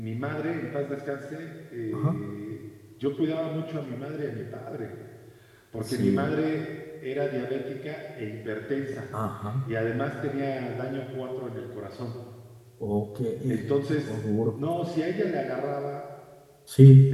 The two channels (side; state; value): both; identical; correlation 1.00